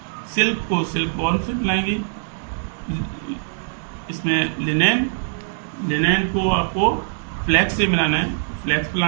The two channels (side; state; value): left; silent; digital silence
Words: Silk को सिल्कवॉर्म से मिलाएंगे। इसमें लिनेन को आपको फ्लैक्स से मिलाना है, फ्लैक्स